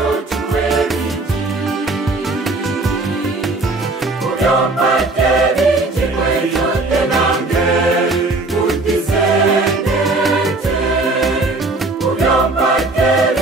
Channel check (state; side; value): quieter; left; 3.2 dB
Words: bingi Kubyompadde bingi kwetondde nange kudisendete Kubyompadde